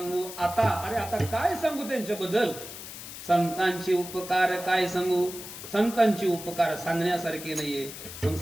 आता, अरे आता काय सांगू त्यांच्याबद्दल? संतांचे उपकार काय सांगू? संतांचे उपकार सांगण्यासारखे नाहीये. मग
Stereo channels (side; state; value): left; noise; hiss, 11 dB below the sound